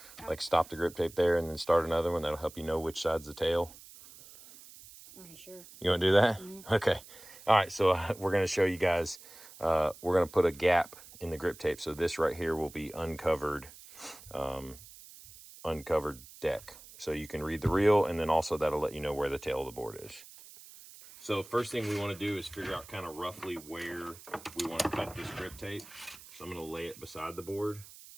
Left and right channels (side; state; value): right; noise; hiss, 19 dB below the sound